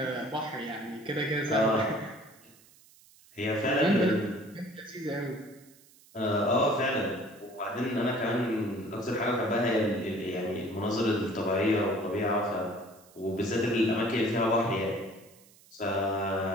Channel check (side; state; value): right; noise; hiss, 26 dB below the sound